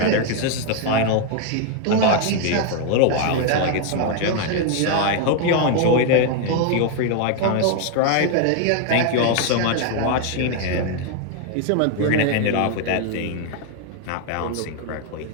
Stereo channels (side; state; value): both; different; correlation 0.00